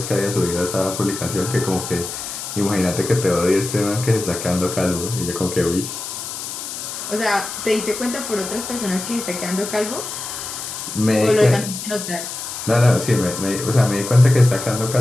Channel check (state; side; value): noise; left; hiss, 7 dB below the sound